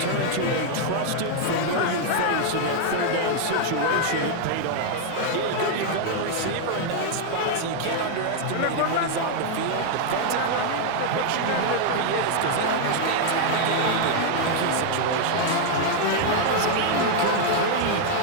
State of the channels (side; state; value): both; different; correlation 0.00